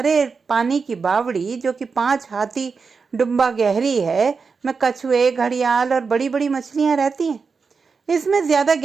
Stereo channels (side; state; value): left; quieter; 5.1 dB